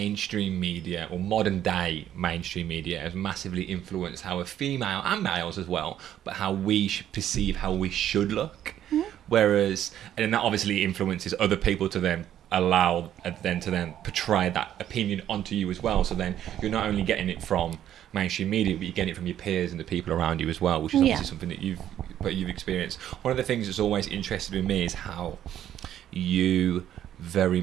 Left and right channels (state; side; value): quieter; left; 11.1 dB